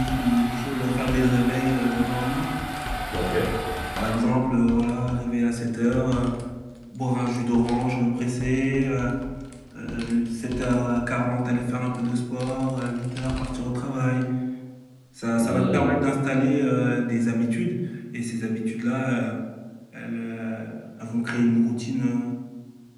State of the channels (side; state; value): both; identical; correlation 1.00